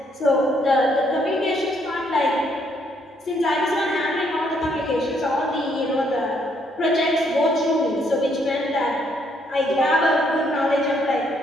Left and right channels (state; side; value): normal; both; correlation 0.70